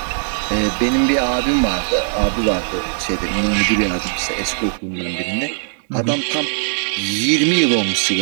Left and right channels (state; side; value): silent; left; 67 dB below the other